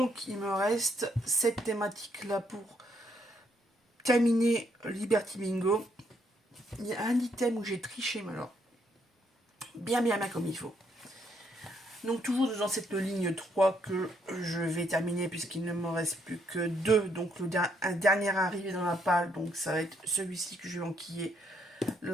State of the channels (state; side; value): normal; both; correlation 0.72